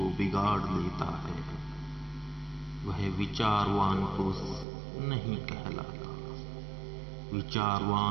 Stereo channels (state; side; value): drops out; left; at 4.7 s